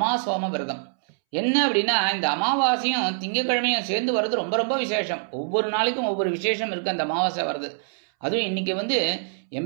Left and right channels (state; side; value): silent; left; 62 dB below the other